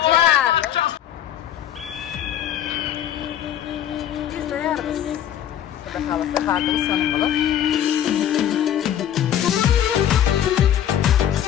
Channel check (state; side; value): quieter; right; 10.5 dB